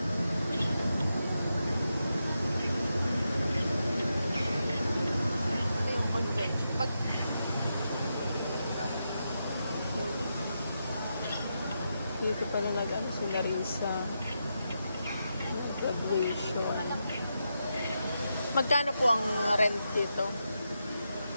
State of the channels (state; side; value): inverted; both; correlation -0.86